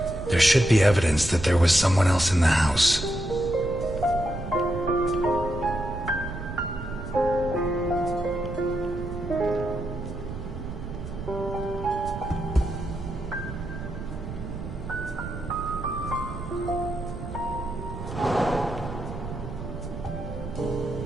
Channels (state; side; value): noise; right; rumble, 8 dB below the sound